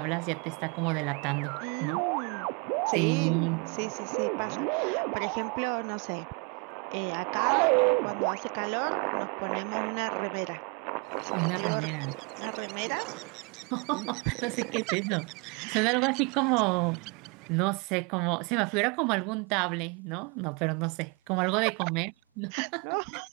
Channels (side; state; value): left; quieter; 32.0 dB